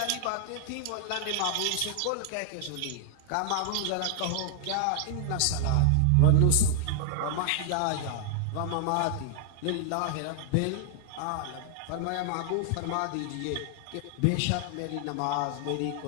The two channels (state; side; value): different; both; correlation 0.00